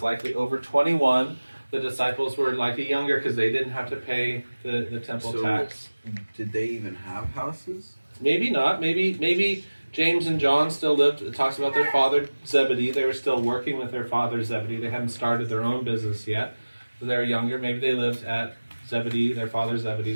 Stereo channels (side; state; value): both; inverted; correlation -1.00